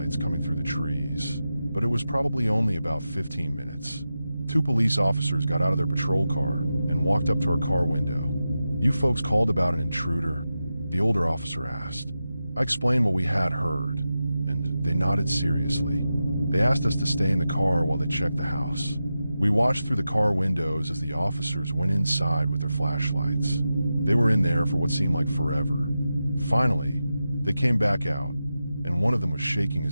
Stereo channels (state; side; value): inverted; both; correlation -0.91